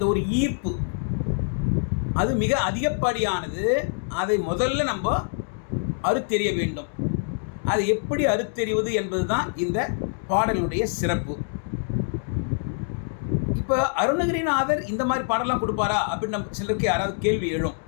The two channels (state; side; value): silent; right; digital silence